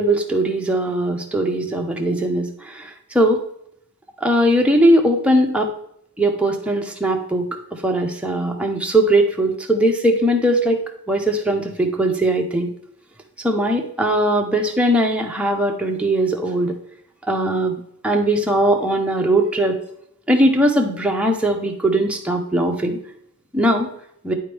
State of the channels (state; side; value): normal; both; correlation 0.59